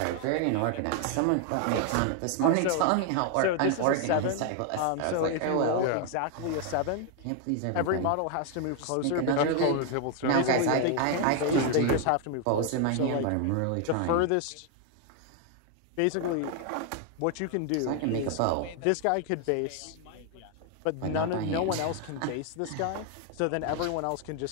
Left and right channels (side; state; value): both; different; correlation 0.01